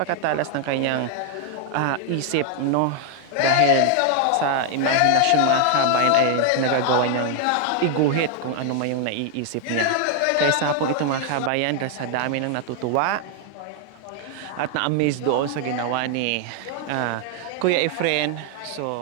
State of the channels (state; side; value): different; both; correlation 0.00